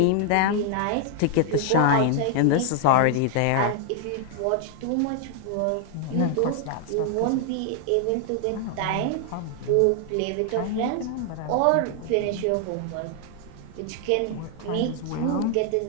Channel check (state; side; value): different; both; correlation 0.00